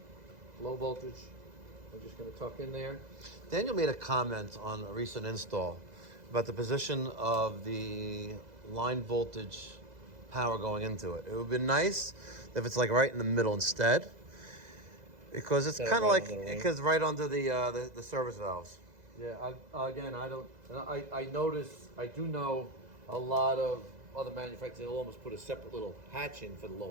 voltage. I'm just going to tuck in there. Daniel made a comment on a recent install about the position of the line voltage power going into it. It would be nice if it's like right in the middle instead, because it's Yeah, kind of right like under the ring. because right under the service valves. Yeah, I notice, I do know a lot of other manufacturers, they'll almost put a separate little hatch in for the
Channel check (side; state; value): left; late; 2.0 ms